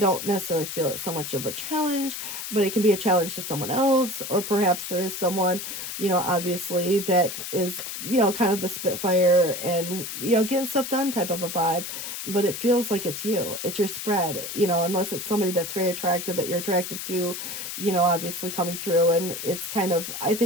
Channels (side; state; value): left; noise; hiss, 7 dB below the sound